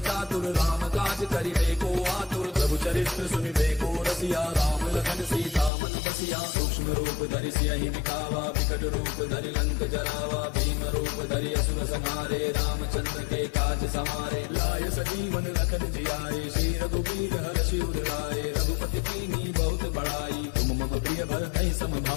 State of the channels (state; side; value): drops out; right; at 5.7 s